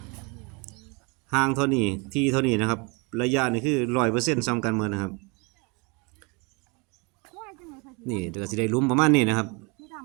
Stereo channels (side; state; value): left; quieter; 30.3 dB